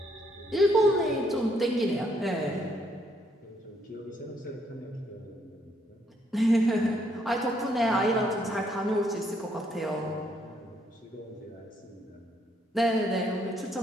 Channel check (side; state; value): both; normal; correlation 0.71